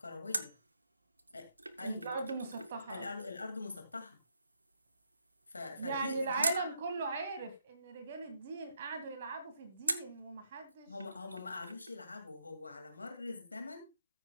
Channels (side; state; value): both; inverted; correlation -0.78